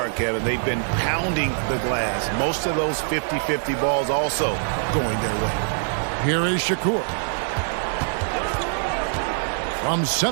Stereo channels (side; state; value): left; silent; 63 dB below the other